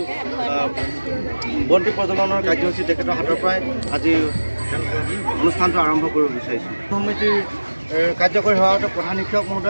বন্তি প্ৰজ্বলনৰ কাৰ্যসূচী তেখেতৰ হাতৰ পৰাই আজি অনুষ্ঠানটো আৰম্ভ কৰিব বিচাৰিছোঁ। সমিতিৰ কাৰ্যকৰী সভাপতি প্ৰধান শিক্ষক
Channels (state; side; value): inverted; both; correlation -1.00